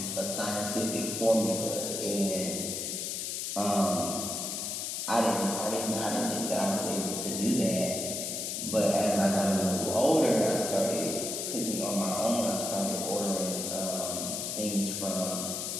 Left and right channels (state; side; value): noise; left; hiss, 3 dB below the sound